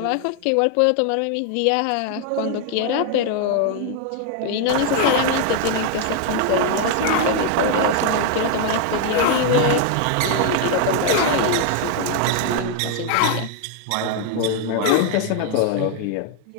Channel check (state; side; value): different; both; correlation 0.00